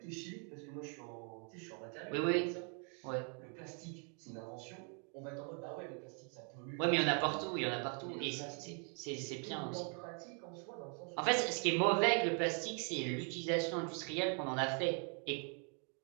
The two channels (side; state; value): left; quieter; 38.5 dB